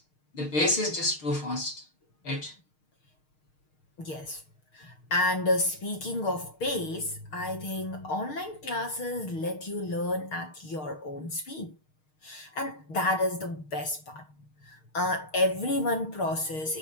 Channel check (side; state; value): right; late; 6.5 ms